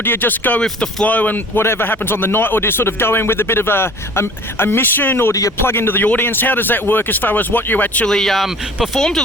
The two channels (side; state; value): both; normal; correlation 0.47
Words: do you just go with the flow and whatever happens on the night, or do you sort of go in with a bit of a mission, or do you plug into the audience? How does that work as far as what you actually perform to